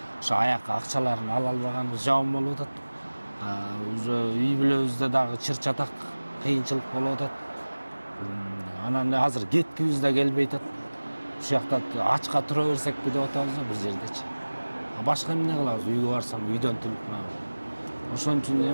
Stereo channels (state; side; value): inverted; both; correlation -1.00